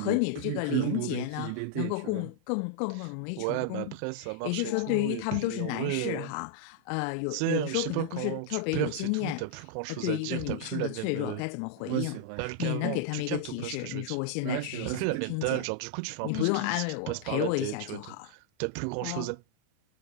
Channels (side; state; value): both; different; correlation -0.01